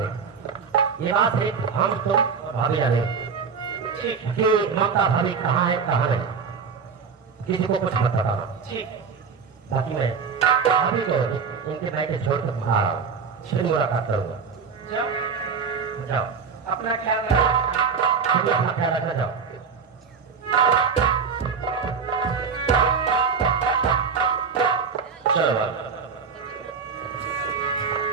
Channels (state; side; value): quieter; left; 5.8 dB